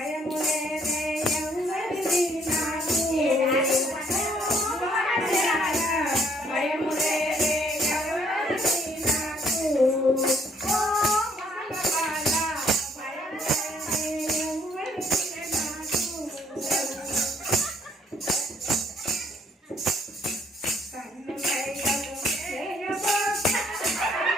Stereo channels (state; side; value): normal; both; correlation 0.65